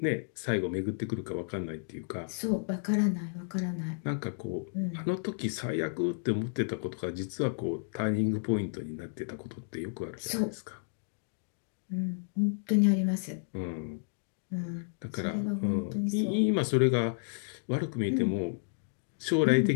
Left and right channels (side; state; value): right; silent; digital silence